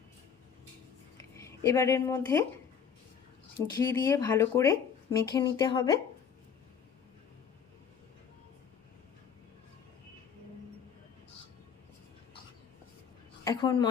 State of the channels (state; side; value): quieter; right; 7.2 dB